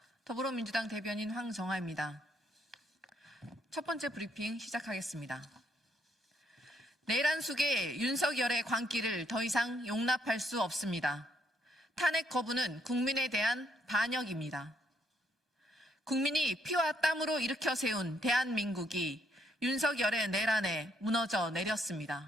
더불어민주당 대변인 황정아입니다. 첫 번째 브리핑 시작하겠습니다. 내란 속의 윤석열의 광기를 더 이상 용납할 수 없습니다. 탄핵 거부는 국민에 대한 반역입니다. 국민이 피와 땀으로 일으켜 세운 대한민국이 윤석열의 내란에 무너져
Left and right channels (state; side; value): normal; both; correlation 0.72